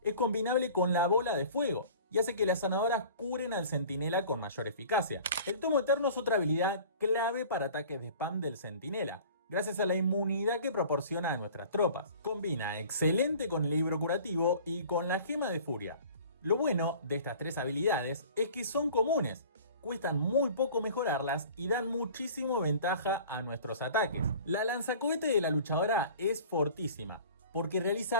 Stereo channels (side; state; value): both; inverted; correlation -0.45